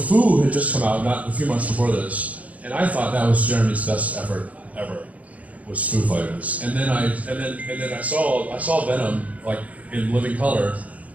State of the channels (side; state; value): left; late; 0.070 ms